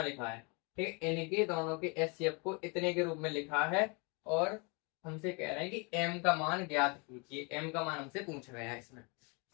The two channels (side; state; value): right; quieter; 31.7 dB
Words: लिखा है, ठीक है। इनके दोनों के HCF को इतने के रूप में लिखा है, और हमसे कह रहे हैं कि m का मान ज्ञात कीजिए। m का मान हमसे पूछा गया है इसमें।